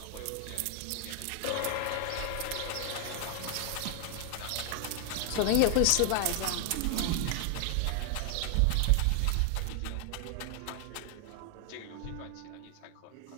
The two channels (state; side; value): different; both; correlation 0.00